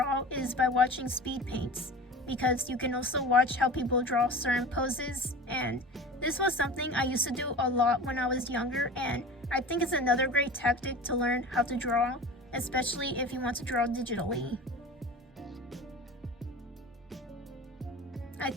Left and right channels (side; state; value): both; normal; correlation 0.35